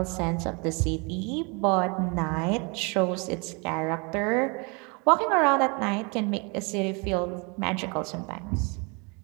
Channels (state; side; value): quieter; left; 31.6 dB